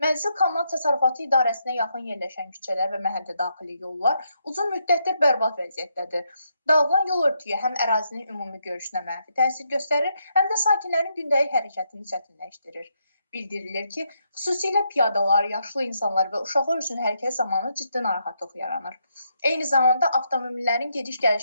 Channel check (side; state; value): both; inverted; correlation -0.79